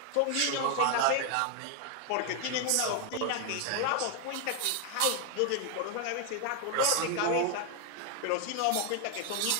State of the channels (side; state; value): both; different; correlation 0.00